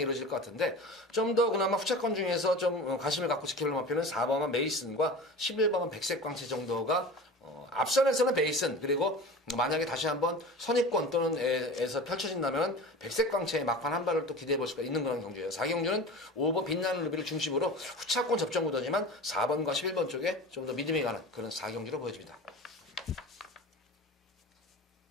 것 같은데 좀 더 그나마 후차권 중에서 좀 관심을 갖고 지켜볼 마표는 4번만 메이슨과 11번만 백색광채 정도가 앞선에서는 베이슨 그리고 만약에 다시 한번 선입권 또는 에서 펼쳐진다면 백색광채의 막판 한 발을 또 기대해 볼 수가 있는 그런 경주예요. 4경주는 5번 빛나는 루비를 중심으로 후차권 접전 구도지만 4번과 11번 쪽에 좀 더 믿음이 가는 그런 4경주로 보여집니다.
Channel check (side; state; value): both; normal; correlation 0.34